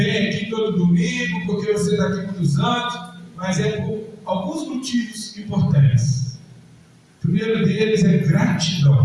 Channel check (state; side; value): identical; both; correlation 1.00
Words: aqui todo domingo, porque você está aqui muitos anos, mas é por alguns motivos importantes. O primeiro deles é